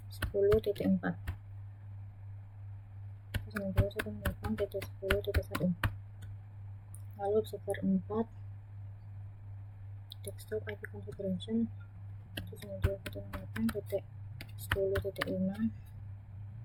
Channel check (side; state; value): both; identical; correlation 1.00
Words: 192.168.10.1. Lalu web server 4, desktop IP configuration 192.168.10.5.